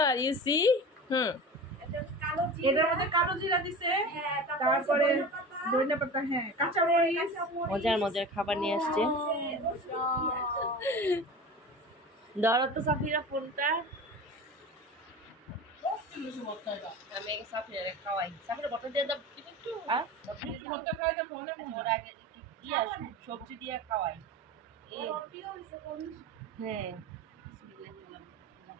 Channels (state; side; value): normal; both; correlation 0.33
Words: ইউ সি এটার মধ্যে কালো জিরা দিছে, তারপরে ধনিয়া পাতা, হ্যাঁ কাঁচা মরিচ, মজার মজার খাবার নিয়ে আসছে। ধরো তো সাফিরা ফোনটা, আমি আগে সাফিরা খাওয়াই। সাফিরা বটল দিয়ে দাও একটু, ভর্তা খাওয়াই তো ফোনে ওর আগে দিয়া সবজি দিয়ে খাওয়াই। হ্যাঁ